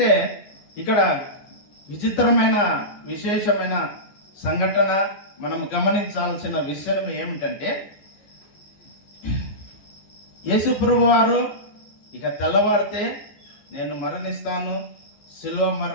ఇక్కడ విచిత్రమైన విశేషమైన సంఘటన మనం గమనించాల్సిన విషయం ఏమిటంటే, యేసు ప్రభువారు ఇక తెల్లవారితే నేను మరణిస్తాను, శిలువ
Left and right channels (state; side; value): late; right; 15 ms